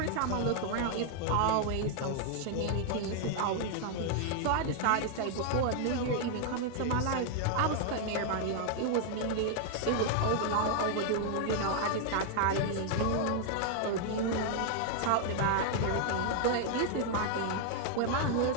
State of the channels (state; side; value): different; both; correlation 0.00